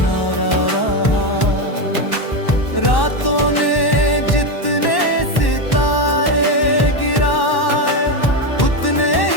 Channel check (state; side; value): late; right; 1.1 ms